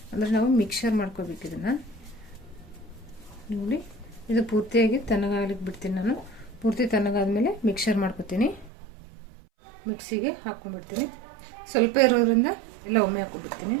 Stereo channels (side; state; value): left; drops out; at 8.7 s